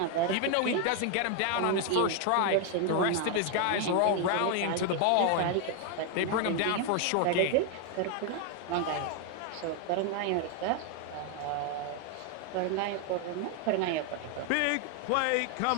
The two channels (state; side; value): different; both; correlation 0.01